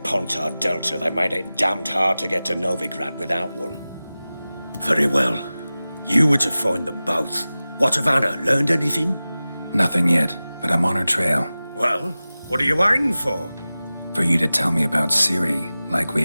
Delta, they made it damned hard to get to Novigrad without one. Very well. You were to find them both. What of Anna? Learned anything? Nothing yet, but I'm on her trail. Well, what are you waiting for? For you to tell me about Seri, like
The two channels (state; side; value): inverted; both; correlation -0.97